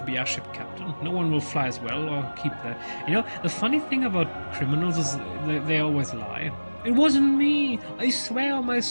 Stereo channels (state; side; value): inverted; both; correlation -1.00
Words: be airship captain. No one will fly as well or keep their... You know, the funny thing about criminals is they always lie. It wasn't me. I swear on my